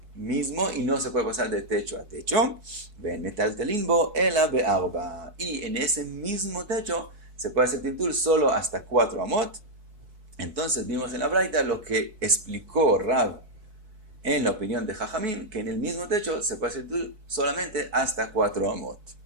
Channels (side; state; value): left; late; 4.6 ms